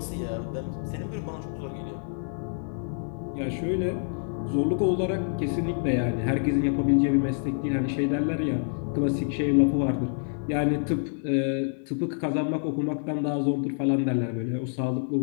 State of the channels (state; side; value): silent; right; digital silence